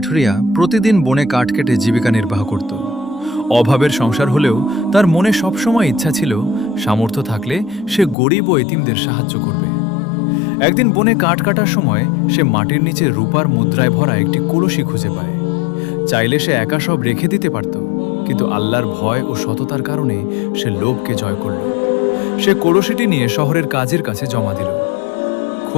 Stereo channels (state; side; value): drops out; right; at 8.2 s